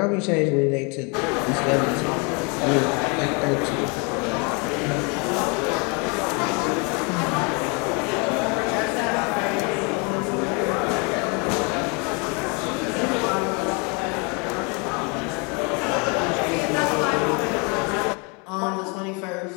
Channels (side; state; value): right; quieter; 32.3 dB